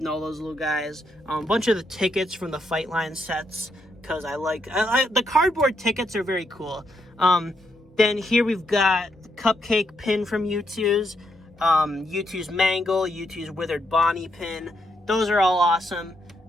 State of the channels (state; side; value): normal; both; correlation 0.78